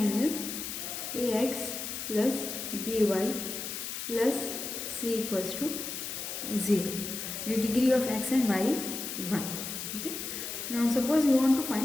is ax plus by plus c equals to 0. The degree of x and y is 1. Okay. Now suppose we want to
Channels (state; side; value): noise; left; hiss, 6 dB below the sound